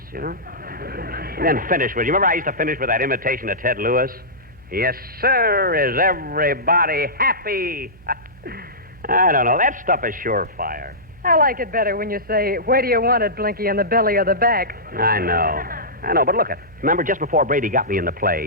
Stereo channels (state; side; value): normal; both; correlation -0.18